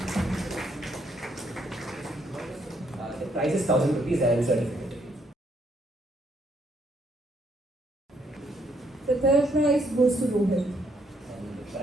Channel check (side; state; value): both; normal; correlation 0.71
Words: The prize is 1000 rupees and certificate. The third prize goes to Rohit. And the